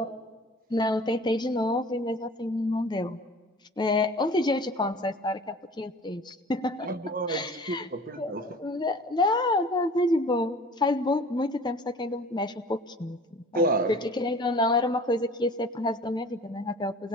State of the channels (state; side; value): normal; both; correlation 0.45